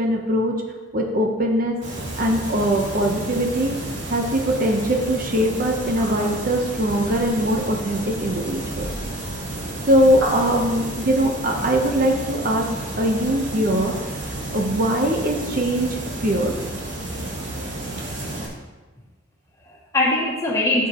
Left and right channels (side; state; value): both; normal; correlation 0.42